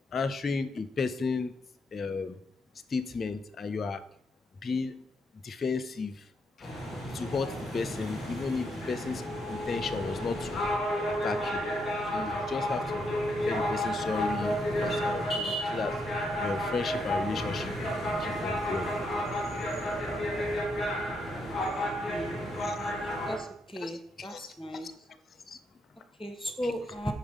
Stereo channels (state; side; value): normal; both; correlation 0.78